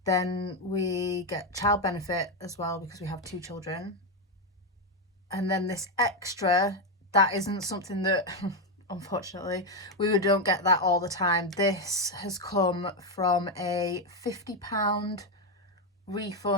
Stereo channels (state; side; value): normal; both; correlation 0.07